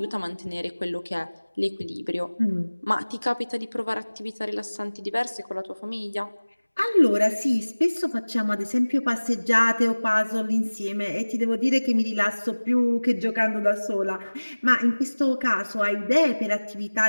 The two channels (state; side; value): inverted; both; correlation -1.00